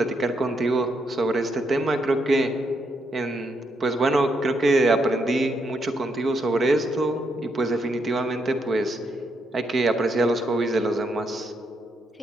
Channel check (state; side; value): normal; both; correlation 0.78